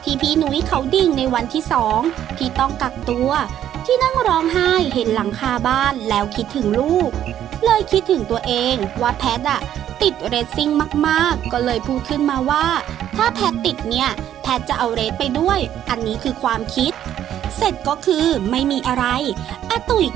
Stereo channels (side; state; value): left; quieter; 10.9 dB